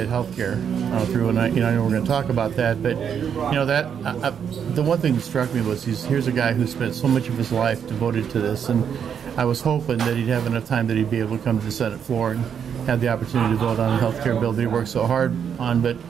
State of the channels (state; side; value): quieter; left; 7.8 dB